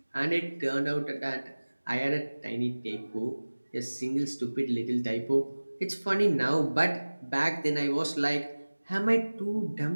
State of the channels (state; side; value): inverted; both; correlation -1.00